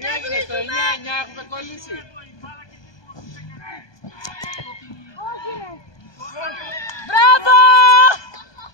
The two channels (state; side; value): late; right; 1.2 ms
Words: στο 9-9, έχουμε κολλήσει. Μπράβο!